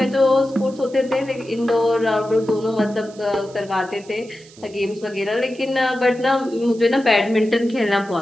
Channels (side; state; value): right; noise; hiss, 24 dB below the sound